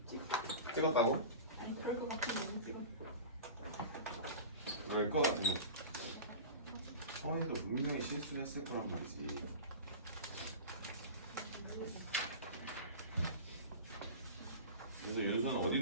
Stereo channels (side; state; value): both; inverted; correlation -0.33